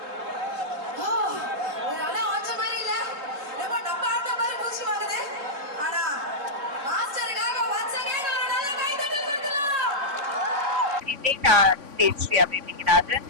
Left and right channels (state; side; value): late; left; 3.5 ms